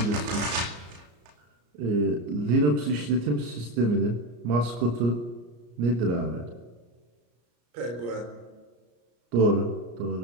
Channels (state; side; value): late; left; 34 ms